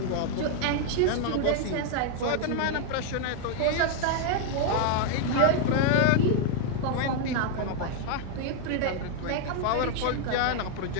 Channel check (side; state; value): both; different; correlation 0.00